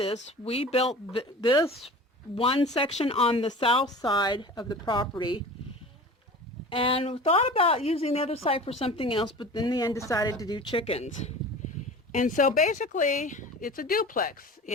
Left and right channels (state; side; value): normal; both; correlation 0.38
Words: we built this one section on the south side of the property, and we thought about using the other side for something else, but in the end decided to do chickens. And so basically it's a duplex.